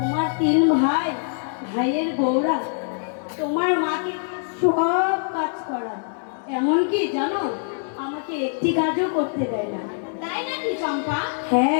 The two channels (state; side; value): silent; right; digital silence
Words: তিন ভাই, ভাইয়ের বউরা তোমার মাকে সব কাজ করায়, এমনকি জানো আমাকে একটি কাজও করতে দেয় না। তাই নাকি চম্পা?